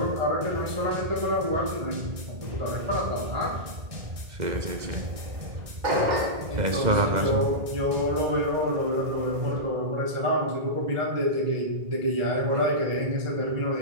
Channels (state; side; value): late; left; 2.0 ms